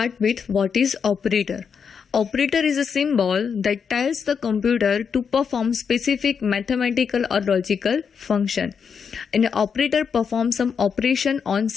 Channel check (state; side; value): quieter; right; 6.5 dB